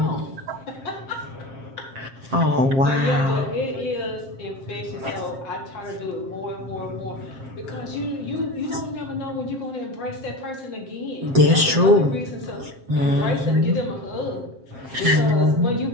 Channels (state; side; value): late; left; 7.5 ms